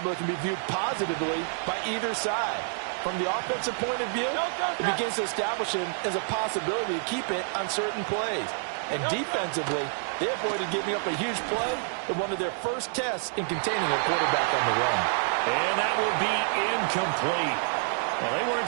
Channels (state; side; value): silent; left; 59 dB below the other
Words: that can be viewed positively by either side. From the offensive point of view, it begins to establish him as a possibility to keep it on certain plays. And defensively, they avoided giving up a huge play in one of their first tests in containing a quarterback on the run. And that will be incomplete. Well, they weren't